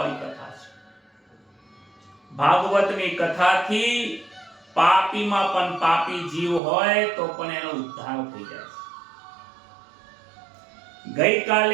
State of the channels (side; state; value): left; drops out; at 6.6 s